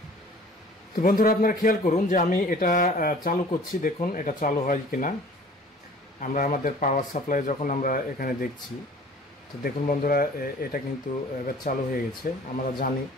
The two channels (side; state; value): both; normal; correlation 0.49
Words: তো বন্ধুরা, আপনারা খেয়াল করুন যে আমি এটা চালু করছি। দেখুন এটা চালু হয় কিনা। আমরা আমাদের পাওয়ার সাপ্লাই যখন আমরা এখানে দেখছি, তো দেখুন বন্ধুরা, এটা কিন্তু এবার চালু হয়ে গেছে। আমরা জানি